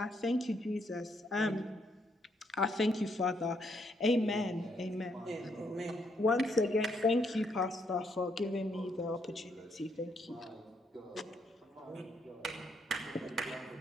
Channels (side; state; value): both; normal; correlation 0.74